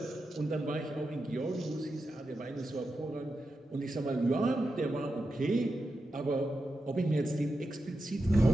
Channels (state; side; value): normal; both; correlation 0.89